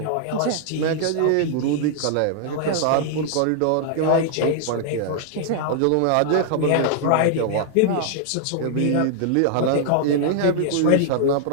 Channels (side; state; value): both; different; correlation -0.01